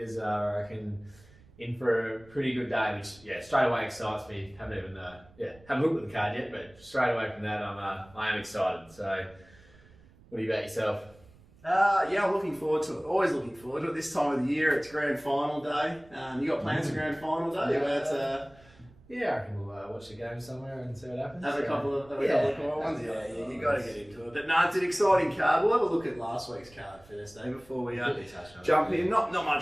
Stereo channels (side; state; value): right; noise; rumble, 26 dB below the sound